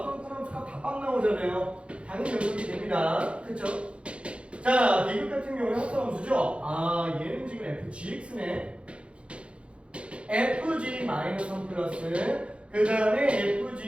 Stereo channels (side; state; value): left; late; 0.059 ms